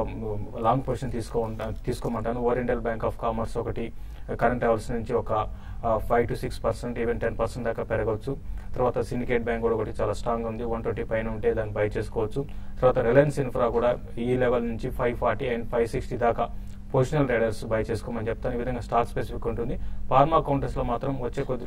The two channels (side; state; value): both; identical; correlation 1.00